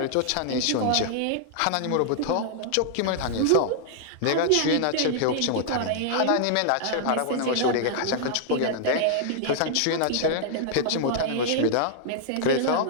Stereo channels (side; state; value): both; different; correlation -0.01